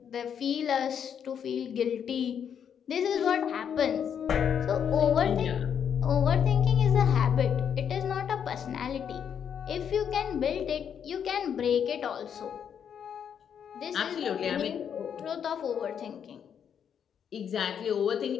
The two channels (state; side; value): quieter; right; 8.1 dB